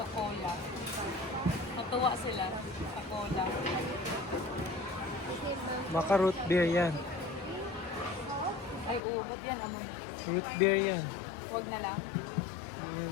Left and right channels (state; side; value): drops out; right; at 9.0 s